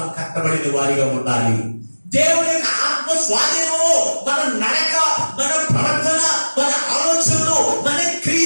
కట్టబడిన వారిగా ఉండాలి. దేవుని యొక్క ఆత్మ స్వాధీనము మన నడక, మన ప్రవర్తన, మన ఆలోచనలు, మన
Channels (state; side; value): inverted; both; correlation -1.00